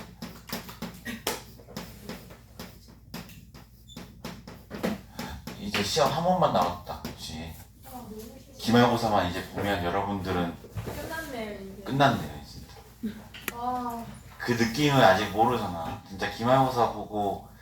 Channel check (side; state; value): both; identical; correlation 1.00